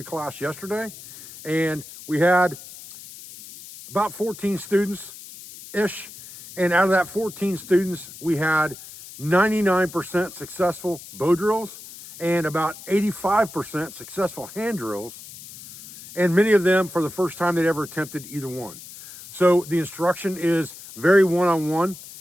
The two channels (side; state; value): left; noise; hiss, 16 dB below the sound